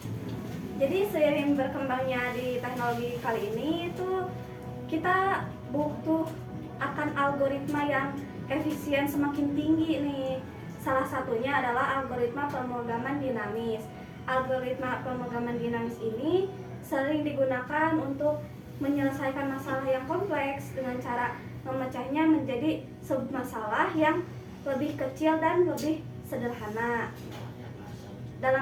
Jadi seiring berkembangnya di teknologi kali ini itu kita butuh akan algoritma yang efisien semakin tinggi nih. Salah satunya adalah algoritma pemrograman dinamis. Algoritma pemrograman dinamis ini sering digunakan untuk menyelesaikan masalah yang kompleks dengan cara memecahnya menjadi submasalah yang lebih kecil dan lebih sederhana.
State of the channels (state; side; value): identical; both; correlation 1.00